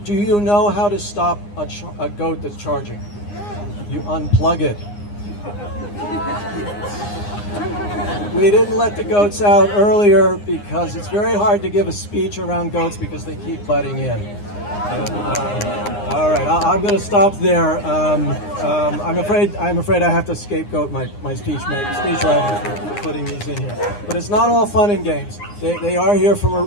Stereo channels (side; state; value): right; late; 9.7 ms